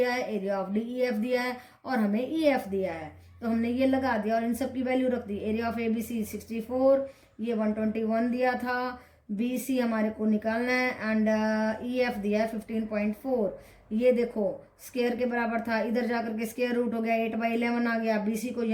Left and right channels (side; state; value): both; identical; correlation 1.00